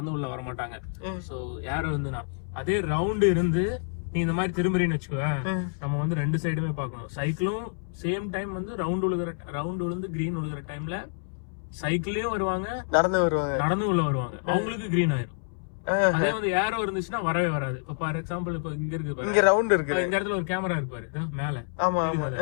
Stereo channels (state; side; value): silent; right; 60 dB below the other